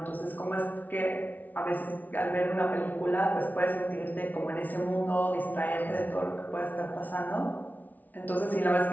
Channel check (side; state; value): right; late; 0.078 ms